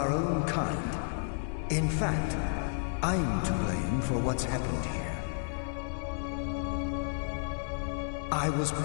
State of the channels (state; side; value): silent; right; 57 dB below the other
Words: own kind. In fact, I'm to blame for what's happened here. I was